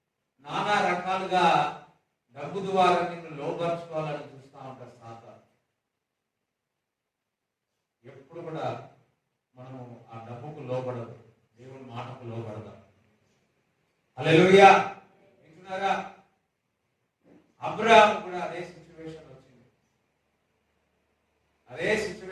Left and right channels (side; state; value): both; identical; correlation 1.00